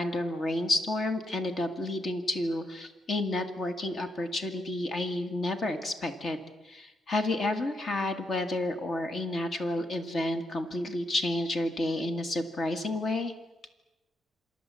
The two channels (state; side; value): normal; both; correlation 0.80